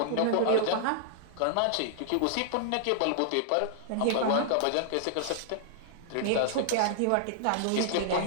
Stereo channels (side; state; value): both; different; correlation -0.01